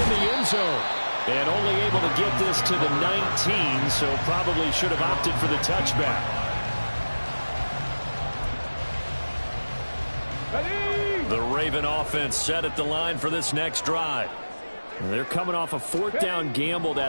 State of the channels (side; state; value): both; inverted; correlation -1.00